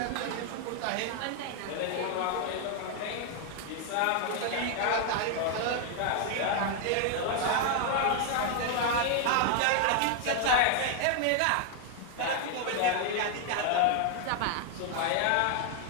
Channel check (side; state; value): both; different; correlation 0.00